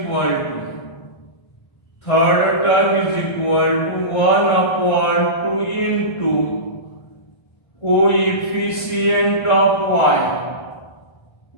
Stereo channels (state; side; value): late; right; 1.5 ms